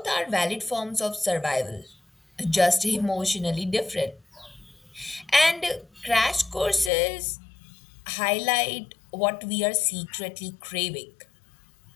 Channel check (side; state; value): right; drops out; at 6.9 s